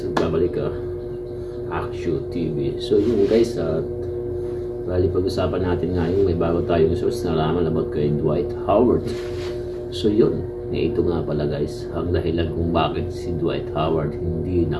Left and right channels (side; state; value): both; identical; correlation 1.00